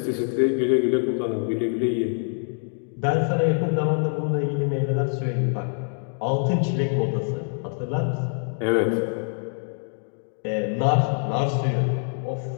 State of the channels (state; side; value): silent; right; 62 dB below the other